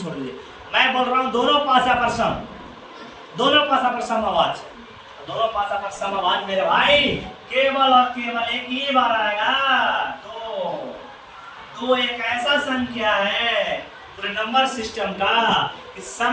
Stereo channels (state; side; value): identical; both; correlation 1.00